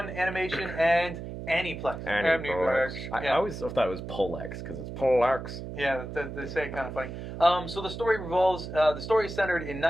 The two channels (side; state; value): right; noise; hum, 9 dB below the sound